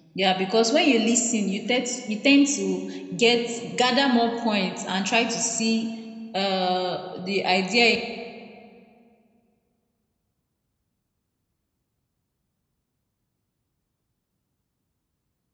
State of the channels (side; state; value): both; identical; correlation 1.00